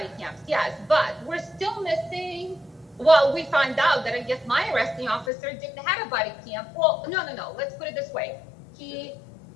cams, yes, but we're still missing. Well, we find out that I guess my arresting officer didn't have a body cam. Well, no. Let's put it this way: he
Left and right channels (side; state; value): right; drops out; at 5.3 s